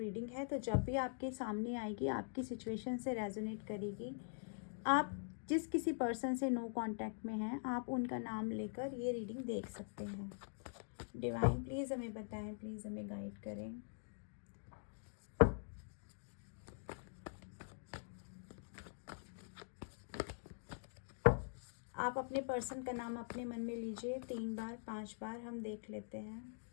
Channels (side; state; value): right; silent; digital silence